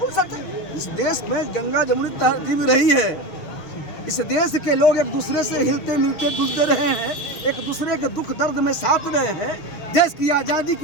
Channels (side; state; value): right; late; 6.6 ms